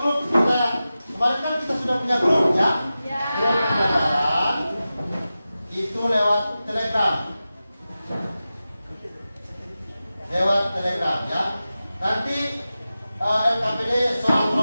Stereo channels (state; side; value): inverted; both; correlation -0.94